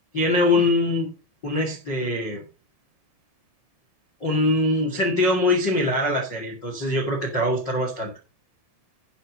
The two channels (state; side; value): late; right; 1.7 ms